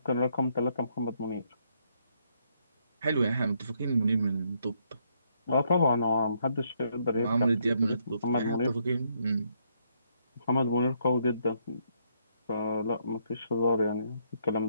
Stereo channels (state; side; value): inverted; both; correlation -0.73